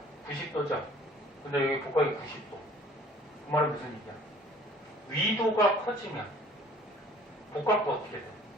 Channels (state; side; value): normal; both; correlation 0.53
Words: 90도죠? 근데 여기 복각이 90도. 그 말은 무슨 얘기야? 위도가 커지면 복각도 어떻게 돼?